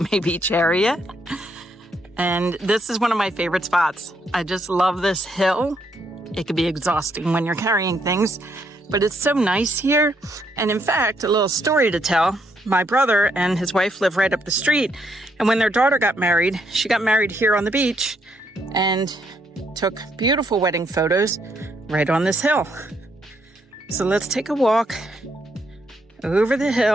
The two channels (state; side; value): normal; both; correlation 0.74